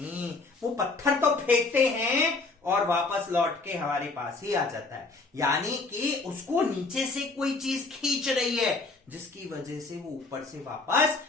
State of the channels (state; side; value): quieter; right; 3.7 dB